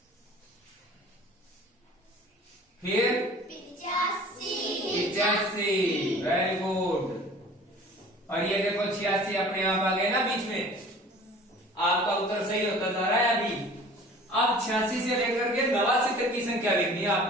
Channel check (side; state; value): both; normal; correlation 0.46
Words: फिर 85, वेरी गुड। और ये देखो 86 अपने आप आ गए ना बीच में, आपका उत्तर सही होता जा रहा है अभी। अब 86 से लेकर के 89 तक की संख्या लिखनी है